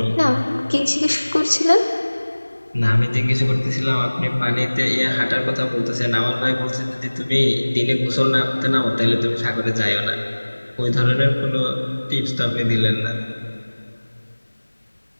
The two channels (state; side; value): inverted; both; correlation -1.00